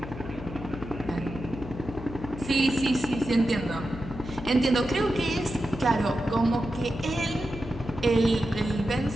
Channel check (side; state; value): left; noise; hum, 11 dB below the sound